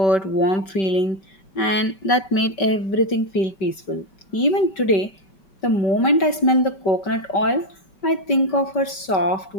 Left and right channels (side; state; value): right; late; 5.2 ms